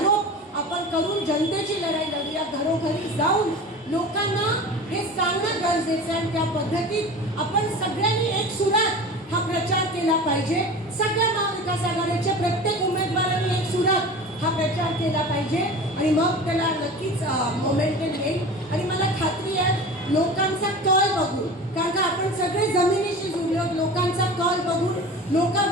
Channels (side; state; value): both; normal; correlation 0.35